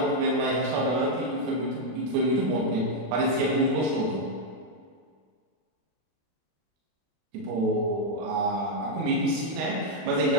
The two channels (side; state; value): left; late; 32 ms